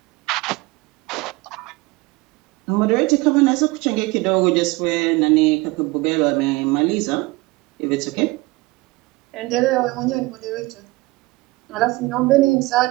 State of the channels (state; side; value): quieter; left; 22.3 dB